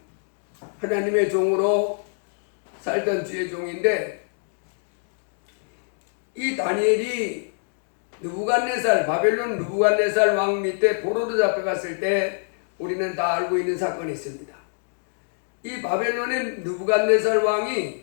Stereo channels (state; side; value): silent; right; digital silence